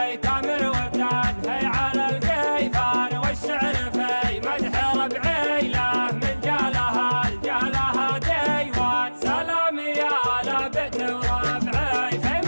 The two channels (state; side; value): inverted; both; correlation -1.00